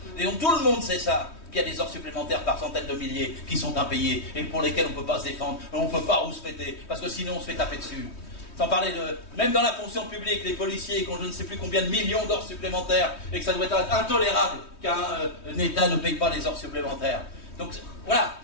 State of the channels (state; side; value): late; right; 3.2 ms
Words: Et donc tout le monde sait ça, qu'il y a des heures supplémentaires par centaines de milliers qui sont impayées et pour lesquelles on ne peut pas se défendre, on ne peut pas rouspéter, parce que sinon on se fait taper dessus. Sans parler de... Même dans la fonction publique, les policiers qui ont je ne sais plus combien de millions d'heures supplémentaires et que ça doit être intolérable qu'un État ne paye pas les heures supplémentaires. Donc voilà,